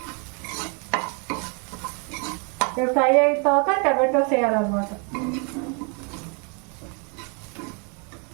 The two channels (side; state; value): left; quieter; 36.3 dB